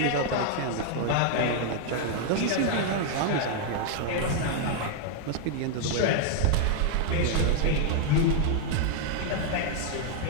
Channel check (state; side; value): different; both; correlation 0.00